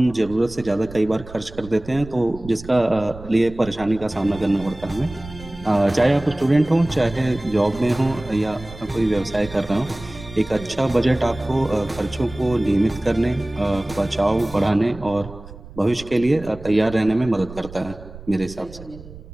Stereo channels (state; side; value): noise; right; rumble, 16 dB below the sound